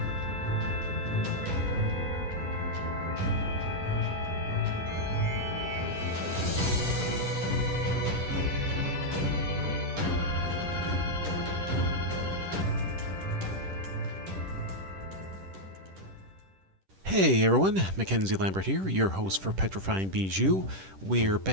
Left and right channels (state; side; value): late; left; 10 ms